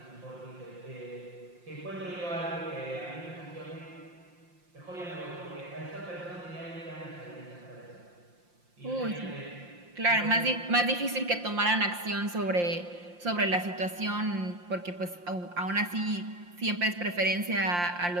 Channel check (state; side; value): late; left; 5.7 ms